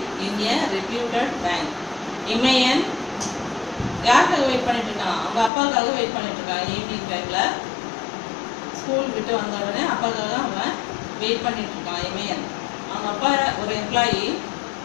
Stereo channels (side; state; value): right; drops out; at 5.5 s